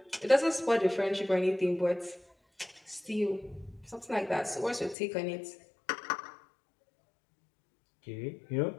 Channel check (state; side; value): drops out; right; at 5.0 s